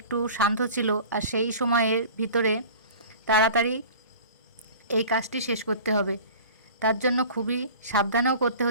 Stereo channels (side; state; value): both; inverted; correlation -0.41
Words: শান্ত ছিল। আর সেই সময়ের ভিতরে তাড়াতাড়ি এই কাজটি শেষ করতে হবে, তার জন্য খুবই সাবধানেও করতে